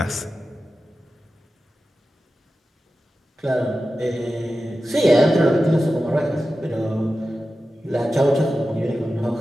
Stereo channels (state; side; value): normal; both; correlation 0.93